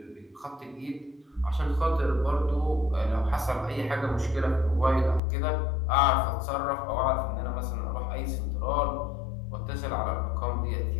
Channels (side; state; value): right; drops out; at 5.2 s